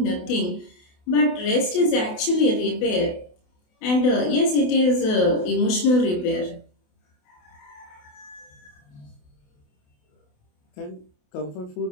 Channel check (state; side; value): late; right; 28 ms